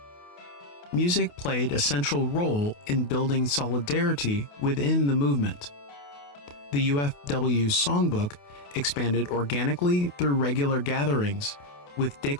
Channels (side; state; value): right; late; 28 ms